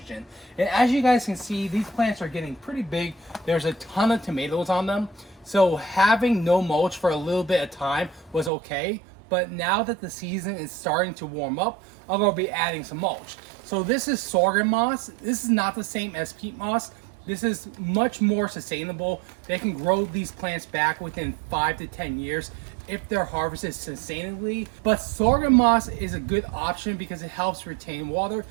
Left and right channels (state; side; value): drops out; left; at 8.5 s